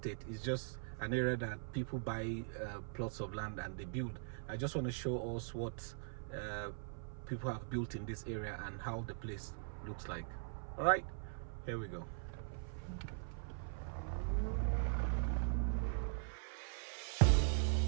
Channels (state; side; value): silent; left; 50 dB below the other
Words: it's just an area that people buy plots of land and they build. I just want to show us what people have built in this area and how the place looks like. All right, here we go.